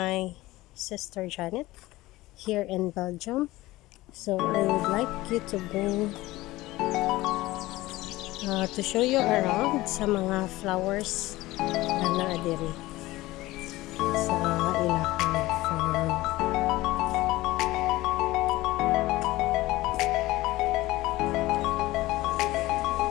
sister Janet here in Belgium. So I would like you to bring to show you around sa mga flowers na naadiri sa ilahang farm.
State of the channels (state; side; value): quieter; right; 18.4 dB